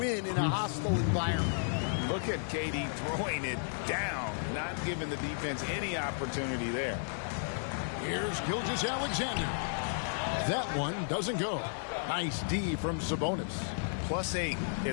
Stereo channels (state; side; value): silent; right; digital silence